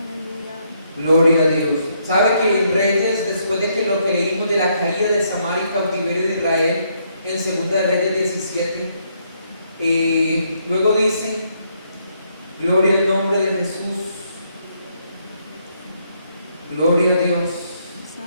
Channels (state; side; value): inverted; both; correlation -0.73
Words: Gloria a Dios. ¿Sabe que en Reyes, después de que lo que leímos de la caída de Samaria y cautiverio de Israel, en 2 de Reyes 17, luego dice, gloria al nombre de Jesús, gloria a Dios,